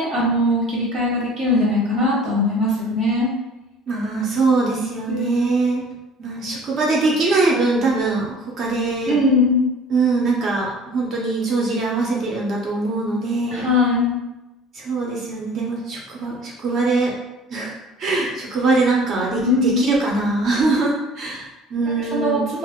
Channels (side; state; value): both; normal; correlation 0.47